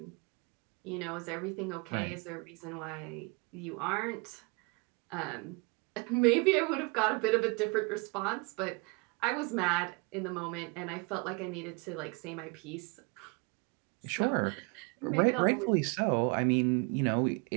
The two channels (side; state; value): left; quieter; 30.5 dB